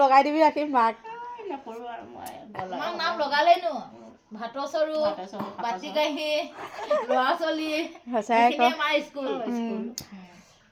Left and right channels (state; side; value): identical; both; correlation 1.00